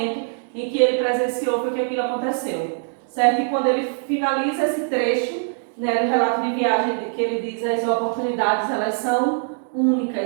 em que ele presenciou foi que aquilo aconteceu, certo? E quando ele finaliza esse trecho, né, do relato de viagem, que ele diz as oportunidades, elas são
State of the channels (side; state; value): left; silent; digital silence